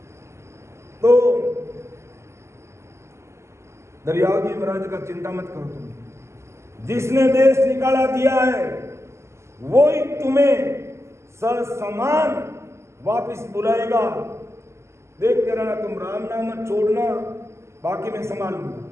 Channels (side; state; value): left; late; 0.13 ms